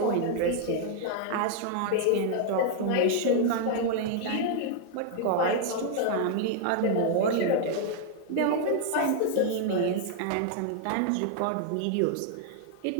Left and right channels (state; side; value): different; both; correlation 0.00